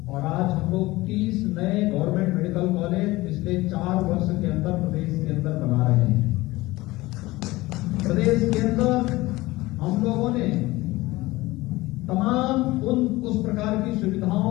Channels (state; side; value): quieter; right; 19.6 dB